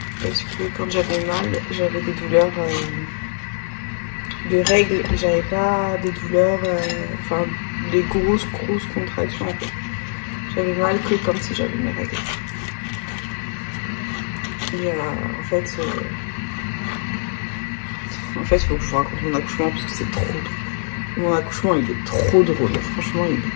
Parce que quand j'avais mal, j'avais des douleurs de règles, j'avais pas des douleurs, enfin des grosses contractions en fait. J'avais mal que comme si j'avais mes règles. Et en fait, il faut que je vous raconte mon accouchement parce que c'est trop drôle. Mon accouchement, il est trop drôle. Franchement, il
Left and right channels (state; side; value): silent; right; 59 dB below the other